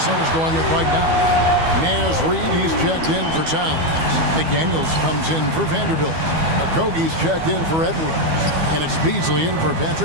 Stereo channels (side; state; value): left; late; 12 ms